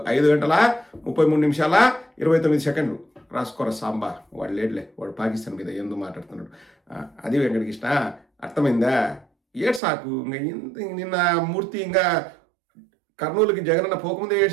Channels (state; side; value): drops out; left; at 9.8 s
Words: 5 గంటల 33 నిమిషాల 29 సెకండ్లు. రాసుకోరా సాంబా, వాడు లేడులే, వాడు పాకిస్తాన్ మీద ఎందుకు మాట్లాడుతున్నాడు. అది వెంకటకృష్ణ, అర్థమైందా? ఏడు సాకు. నిన్న మూర్తి ఇంకా కర్నూలుకి జగనన్న పోకముందే